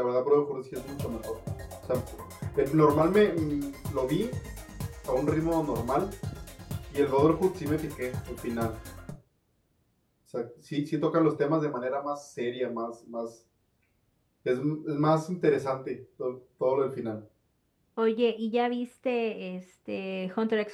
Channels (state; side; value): identical; both; correlation 1.00